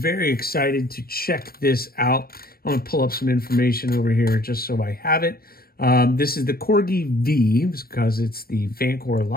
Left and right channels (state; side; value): late; right; 0.44 ms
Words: excited to check this out. I'm gonna pull up some information over here just so I have it. This is the Corgi V because it's the Vancore